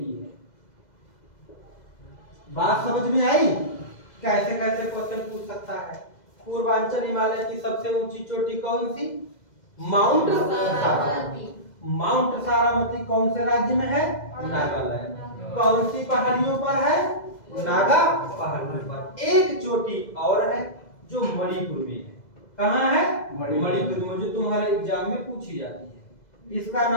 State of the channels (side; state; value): right; late; 2.0 ms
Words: है। बात समझ में आई? कैसे कैसे क्वेश्चन पूछ सकता है। पूर्वांचल हिमालय की सबसे ऊंची चोटी कौन सी? माउंट सारामती। माउंट सारामती कौन से राज्य में है? नागालैंड। कौन सी पहाड़ियों पर है? नागा पहाड़ियों पर। एक चोटी और है जो मणिपुर में है। कहाँ है? मणिपुर में, जो तुम्हारे एग्जाम में पूछी जाती है। इसका